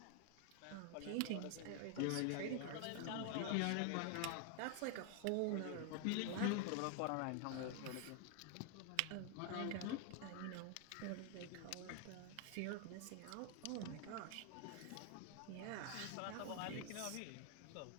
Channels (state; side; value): different; both; correlation 0.00